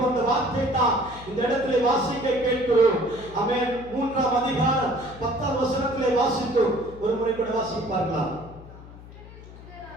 வந்த வார்த்தை தான் இந்த இடத்திலே வாசிக்க கேட்கிறோம். ஆமென். 3ஆம் அதிகாரம் 10ஆம் வசனத்திலே வாசித்தோம். ஒரு முறை கூட வாசிப்பார்களா?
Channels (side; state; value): left; noise; hum, 17 dB below the sound